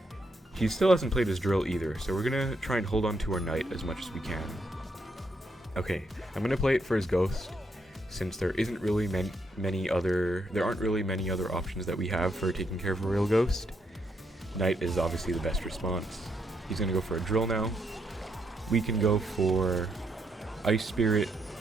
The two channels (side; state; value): both; normal; correlation 0.77